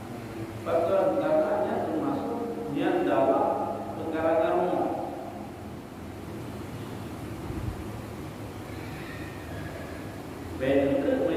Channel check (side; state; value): both; identical; correlation 1.00